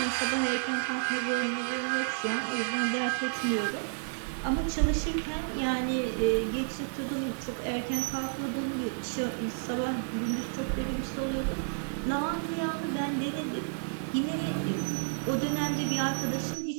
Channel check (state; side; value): silent; left; 57 dB below the other